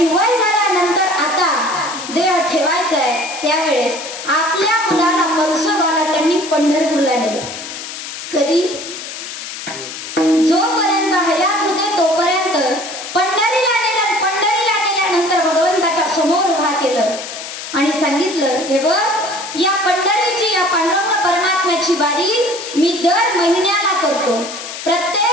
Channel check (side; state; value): left; noise; hiss, 9 dB below the sound